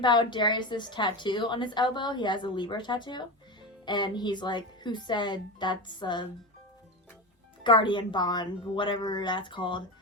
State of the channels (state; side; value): normal; both; correlation 0.21